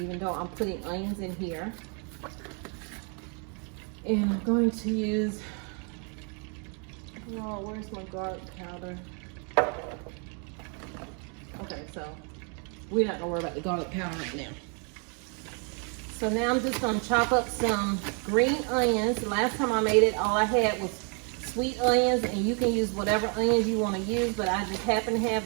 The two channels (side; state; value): left; quieter; 38.2 dB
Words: though I'm putting onions in here. And I'm going to use, oh, where's my garlic powder? Okay, so we're not gonna worry about the garlic powder right now. So now I'm just gonna chop up some green onions. The last time I made it, all I had was sweet onions, and you can use whatever onions you want to use, but I just happen to